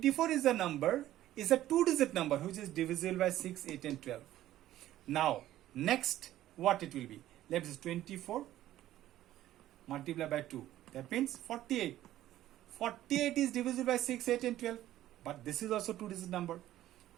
is a number, is a 2-digit number, which is divisible by 6, 8 and 12. Now, next, what it will be? Let us 24 multiply by 2. That means 48. 48 is divisible by 6, 8 and 12. But this is also 2-digit number.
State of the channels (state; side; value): quieter; left; 13.7 dB